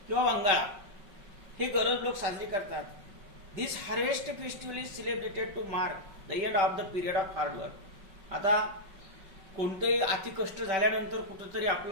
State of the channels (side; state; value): left; late; 5.4 ms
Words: किंवा वंगाळा. हे गरोज लोक साजरे करतात. This harvest festival is celebrated to mark the end of the period of hard work. आता कोणतेही अतिकष्ट झाल्यानंतर कुठंतरी